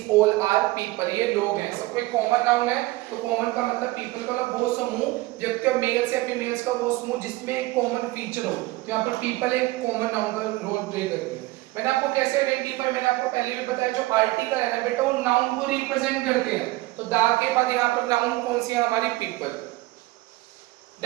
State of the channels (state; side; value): quieter; left; 19.7 dB